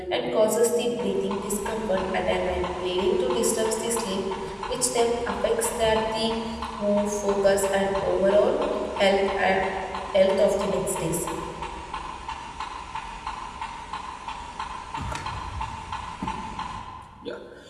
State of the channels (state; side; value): identical; both; correlation 1.00